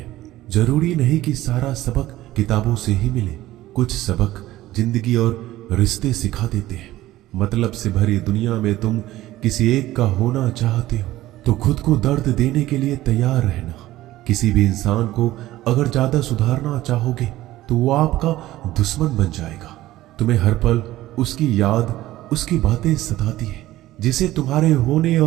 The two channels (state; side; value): quieter; left; 15.8 dB